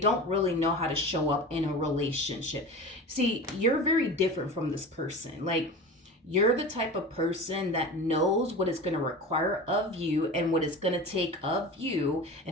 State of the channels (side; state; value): both; normal; correlation 0.33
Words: really know how to show up in a relationship. See, you're very different from this person. Like, you're the type of person that knows what it's going to require of you and what it's going to take of you